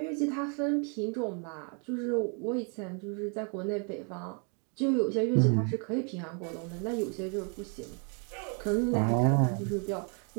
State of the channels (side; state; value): left; quieter; 40.0 dB